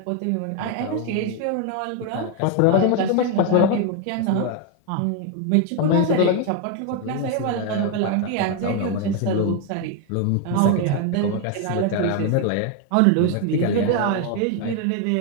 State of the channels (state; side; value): different; both; correlation 0.01